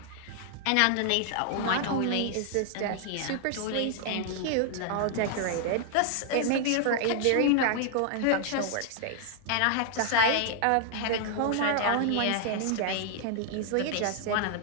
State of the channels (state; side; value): different; both; correlation 0.00